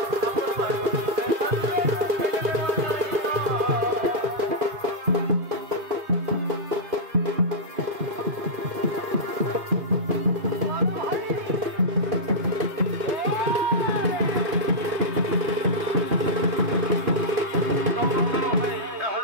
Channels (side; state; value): left; late; 2.4 ms